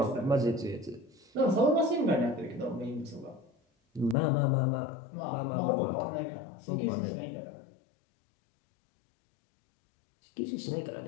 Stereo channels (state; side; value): drops out; right; at 4.2 s